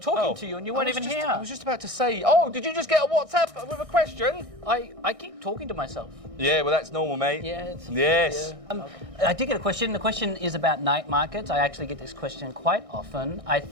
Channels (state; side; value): late; left; 1.6 ms